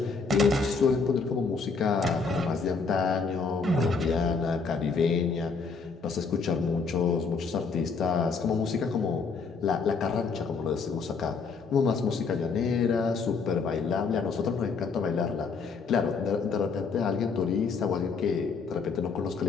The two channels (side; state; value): right; quieter; 4.8 dB